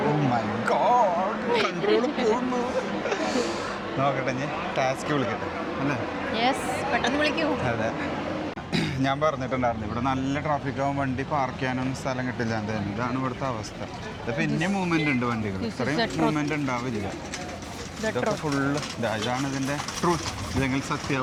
ഓ മൈ ഗോഡ്, കൺട്രോൾ പോകുന്നു. നോക്കട്ടെ, ഞാൻ ടാസ്ക് വിളിക്കട്ടെ അല്ലേ. അതെ, ഞാൻ പറഞ്ഞിട്ടുണ്ടായിരുന്നു ഇവിടെ നല്ല ട്രാഫിക് ആവും, വണ്ടി പാർക്ക് ചെയ്യാനൊന്നും സ്ഥലം കിട്ടില്ല. എന്തായാലും ഇതാണ് ഇവിടുത്തെ അവസ്ഥ. ഇത് പിന്നെ മൂവ്മെന്റ് ഉണ്ട് വണ്ടികൾ, ഇത്രയും മൂവ്മെന്റ് ഉണ്ടാവില്ല. ഇതൊക്കെ ഫുള്ള് ഇതാണ് ഇതിൻ്റെ ട്രൂത്ത്, ഇല്ലെങ്കിൽ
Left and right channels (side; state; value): both; identical; correlation 1.00